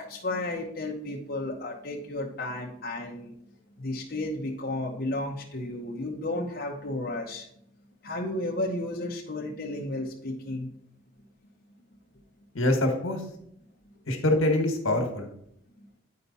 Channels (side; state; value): both; normal; correlation 0.31